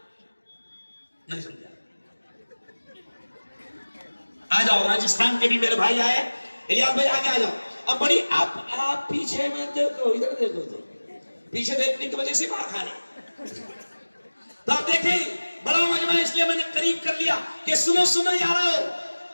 نہیں سمجھا؟ آ جاؤ، راجستھان کے بھی میرے بھائی آئے، الیاس بھائی آگے آ جاؤ۔ اب بڑی آپ پیچھے میں دیکھو، ادھر دیکھو، تو پیچھے دیکھنے کی وجہ سے مار کھا رہے۔ تو آپ دیکھیں بڑا مجمع، اس لیے میں نے قریب کر لیا کہ سنو سنو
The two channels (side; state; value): both; inverted; correlation -1.00